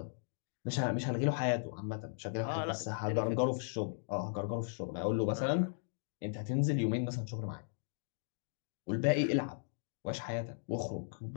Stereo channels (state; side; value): silent; right; digital silence